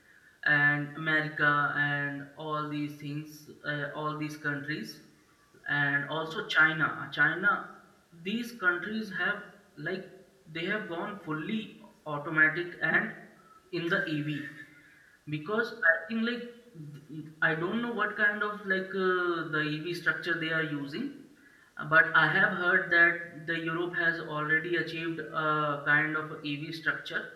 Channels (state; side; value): identical; both; correlation 1.00